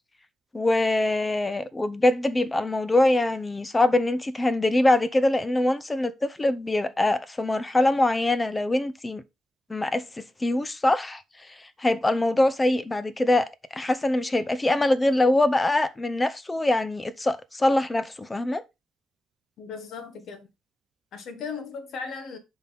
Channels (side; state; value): both; normal; correlation 0.94